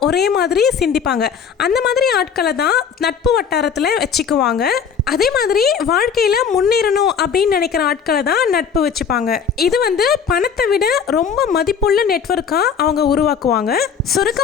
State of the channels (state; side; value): quieter; right; 6.8 dB